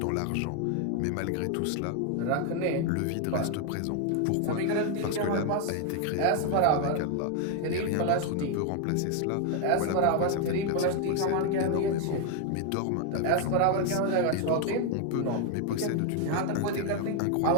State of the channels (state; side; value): different; both; correlation 0.00